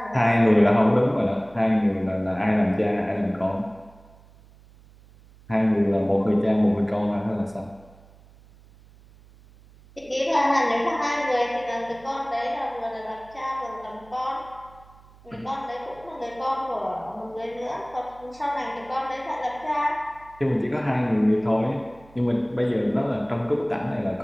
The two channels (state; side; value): noise; right; hum, 25 dB below the sound